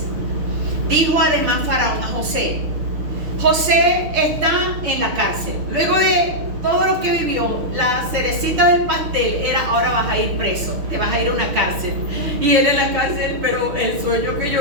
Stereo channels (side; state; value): left; late; 6.3 ms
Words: Dijo además Faraón a José: José está en la cárcel. Luego de todo lo que vivió, la cerecita del pastel era: ahora vas a ir preso, te vas a ir a una cárcel. Y él en la cárcel: pero el sueño que